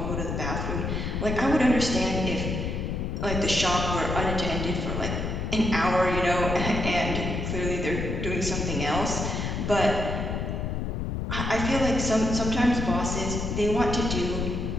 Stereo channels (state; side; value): noise; left; rumble, 2 dB below the sound